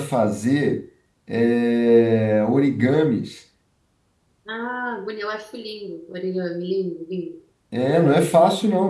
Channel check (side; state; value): both; identical; correlation 1.00